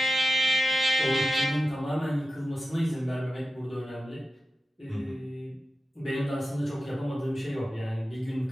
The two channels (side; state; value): both; normal; correlation 0.93